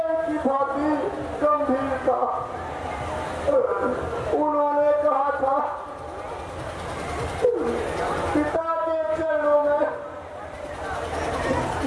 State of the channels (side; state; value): both; identical; correlation 1.00